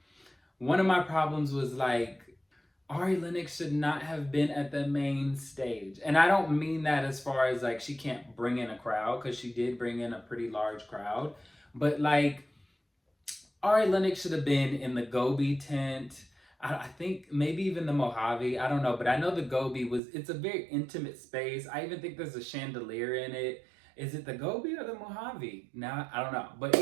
one of my problems was like, Ari Lennox should not have been at the main stage. And I don't mean that as far as like she can't bring in a crowd, because she did bring in a pretty large crowd. But like, Ari Lennox should have been in the Gobi tent. I think maybe even the Mojave. I don't know. But I know the Gobi it's a very intimate space. I even think there's a chandelier in it. Is it the Gobi or the Mojave? Nah, I don't know. But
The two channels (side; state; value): left; drops out; at 20.0 s